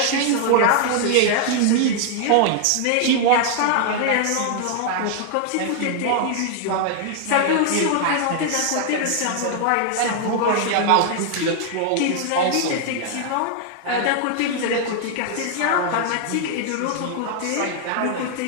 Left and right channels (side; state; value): both; different; correlation 0.00